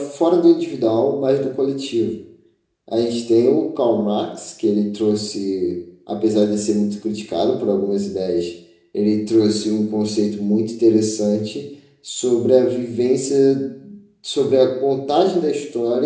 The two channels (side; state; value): both; identical; correlation 1.00